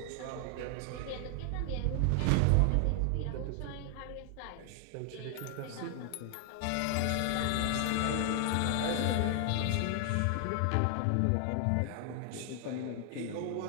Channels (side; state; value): both; different; correlation 0.00